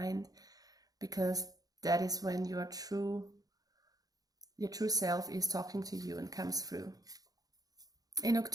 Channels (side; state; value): left; late; 0.18 ms